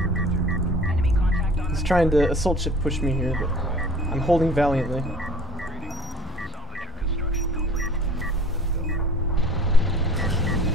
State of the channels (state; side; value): normal; both; correlation 0.47